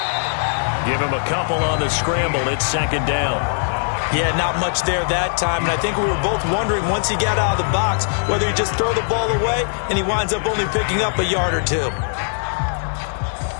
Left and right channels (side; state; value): right; silent; digital silence